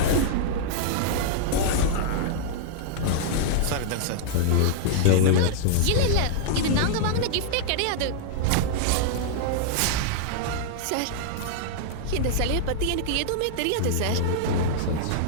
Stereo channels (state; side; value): different; both; correlation -0.01